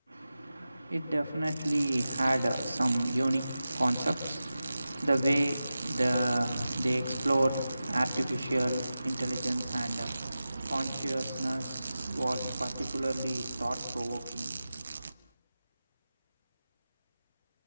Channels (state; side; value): inverted; both; correlation -0.94